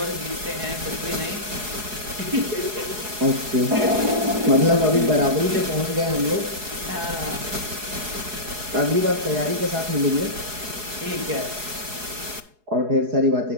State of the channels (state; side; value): late; left; 4.8 ms